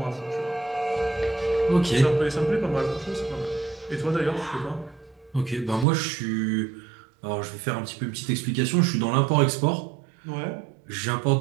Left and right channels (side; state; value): left; drops out; at 5.9 s